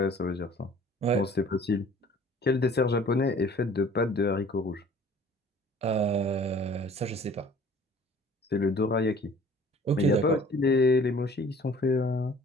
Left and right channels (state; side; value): normal; both; correlation 0.51